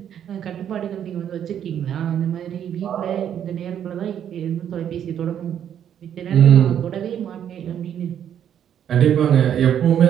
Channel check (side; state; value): left; quieter; 9.5 dB